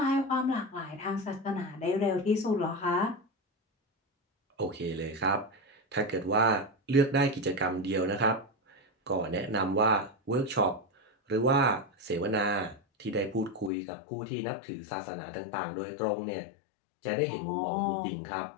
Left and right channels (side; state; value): right; drops out; at 13.7 s